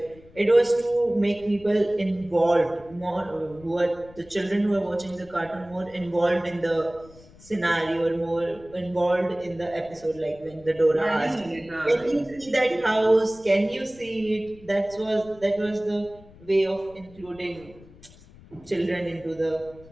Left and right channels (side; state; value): left; noise; rumble, 23 dB below the sound